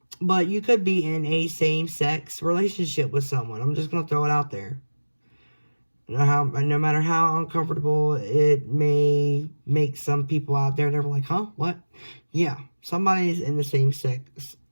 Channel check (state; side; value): inverted; both; correlation -1.00